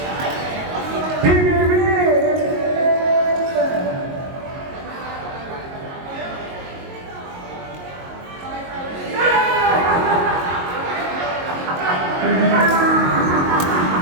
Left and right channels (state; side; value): late; left; 22 ms